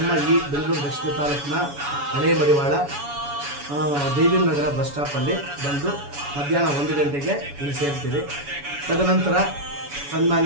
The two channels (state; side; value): late; left; 7.1 ms